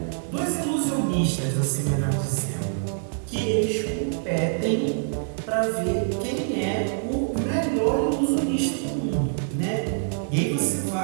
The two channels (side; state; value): left; silent; 62 dB below the other